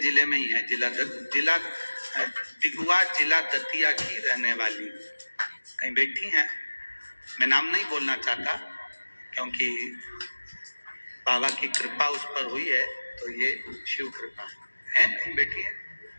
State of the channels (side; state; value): both; inverted; correlation -1.00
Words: जिले में ही है, जिला दिगुआ, जिला दतिया की रहने वाली, कहीं बैठी हैं। मैं नाम नहीं बोलना चाहता क्योंकि बाबा की कृपा उस पर हुई है, तो ये शिव कृपा है, कहीं बैठी है,